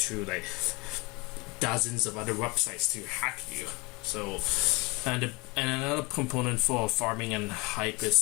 like dozens of other websites to hack you. So, and another component for farming and hype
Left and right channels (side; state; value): right; quieter; 26.3 dB